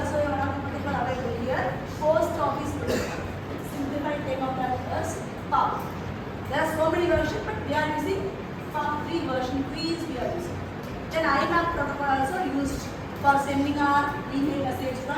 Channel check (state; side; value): identical; both; correlation 1.00